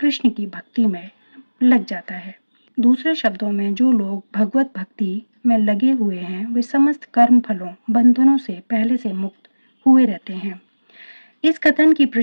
की भक्ति में लग जाता है। दूसरे शब्दों में, जो लोग भगवत भक्ति में लगे हुए हैं, वे समस्त कर्म फलों बंधनों से पहले से मुक्त हुए रहते हैं। इस कथन की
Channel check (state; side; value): inverted; both; correlation -1.00